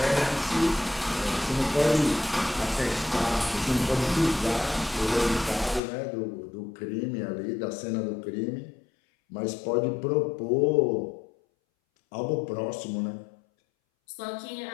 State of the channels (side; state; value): right; drops out; at 5.8 s